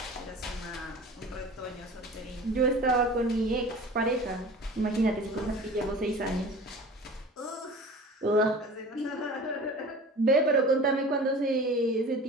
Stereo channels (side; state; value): both; normal; correlation 0.39